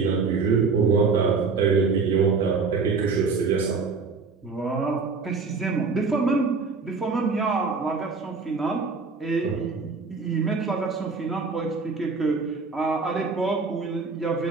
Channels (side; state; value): left; quieter; 4.6 dB